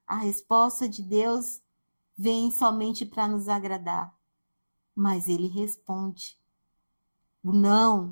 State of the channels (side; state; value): both; inverted; correlation -1.00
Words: a resposta de Deus vem somente para nos agradar. Mas ele responde. O